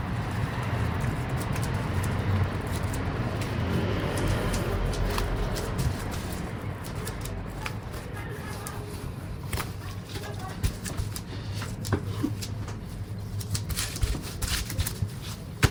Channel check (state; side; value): identical; both; correlation 1.00